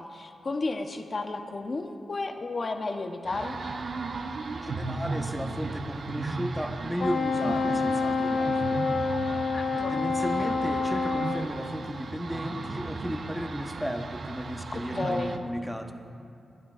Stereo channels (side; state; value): both; normal; correlation 0.89